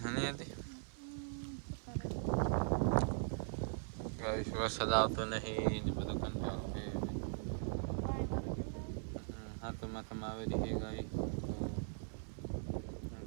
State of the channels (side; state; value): left; silent; 51 dB below the other